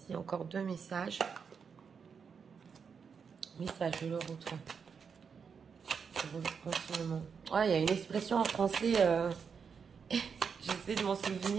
encore 2 messages. Message de l'autre. Ouais, il y a une expression en français, j'essaie de m'en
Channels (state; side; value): quieter; left; 6.2 dB